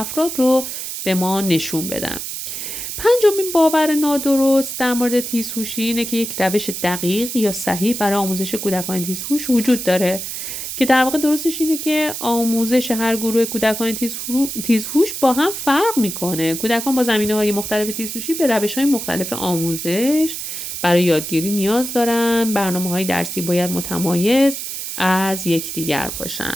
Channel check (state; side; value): noise; right; hiss, 6 dB below the sound